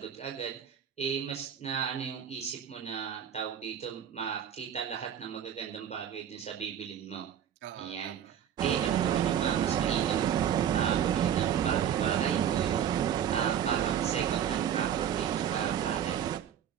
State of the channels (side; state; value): left; quieter; 9.4 dB